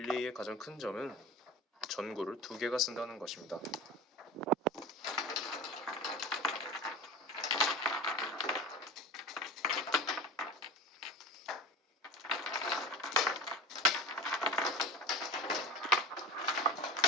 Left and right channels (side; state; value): both; normal; correlation 0.32